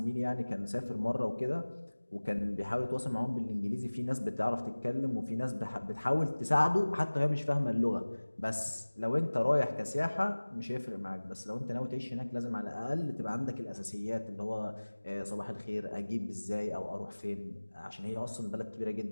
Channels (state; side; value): inverted; both; correlation -1.00